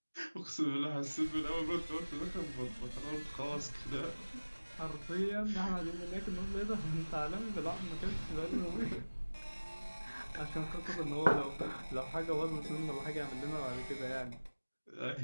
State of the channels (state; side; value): inverted; both; correlation -1.00